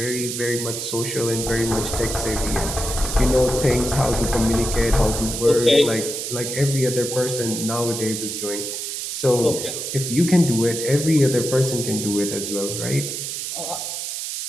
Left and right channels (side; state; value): right; noise; hiss, 5 dB below the sound